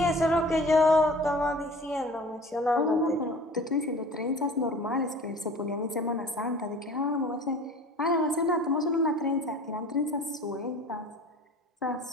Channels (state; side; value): normal; both; correlation 0.43